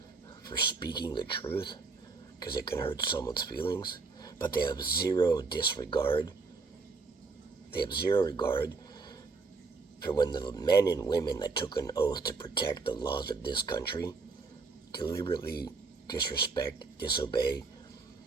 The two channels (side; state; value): left; quieter; 4.3 dB